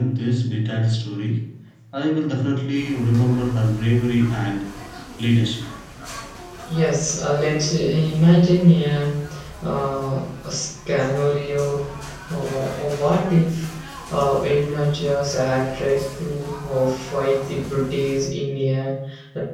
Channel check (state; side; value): identical; both; correlation 1.00